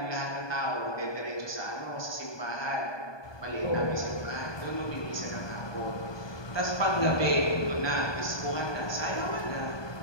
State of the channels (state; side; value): late; right; 1.2 ms